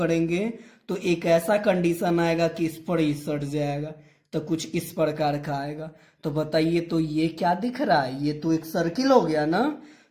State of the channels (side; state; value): both; identical; correlation 1.00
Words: तो एक ऐसा कंडीशन आएगा कि इस पर ही सट जाएगा, तो कुछ इस प्रकार का आएगा। तो बताइए तो ये क्या दिख रहा है, ये तो एक सर्किल हो गया ना।